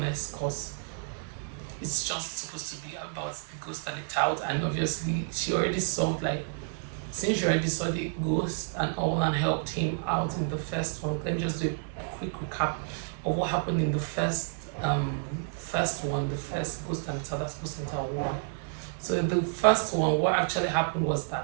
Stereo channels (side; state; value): left; silent; digital silence